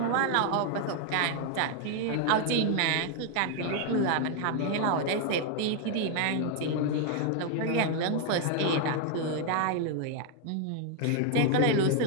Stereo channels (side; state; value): both; different; correlation 0.00